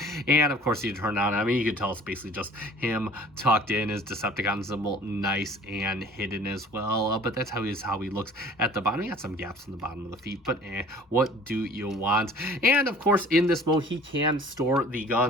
And of course you turn on, I mean, you can tell it's basically just him tucked in, his Decepticon symbol nice and hidden as well. But that's how he looks at the bottom. He got some gaps in the bottom of the feet, but what do you want? And of course in this mode he can store the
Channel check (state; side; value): normal; both; correlation 0.49